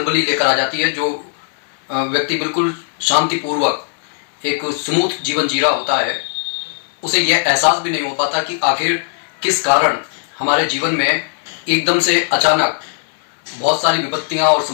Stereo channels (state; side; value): silent; right; digital silence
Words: लेकर आ जाती है। जो व्यक्ति बिल्कुल शांतिपूर्वक एक स्मूथ जीवन जी रहा होता है, उसे यह एहसास भी नहीं हो पाता कि आखिर किस कारण हमारे जीवन में एकदम से अचानक बहुत सारी विपत्तियां और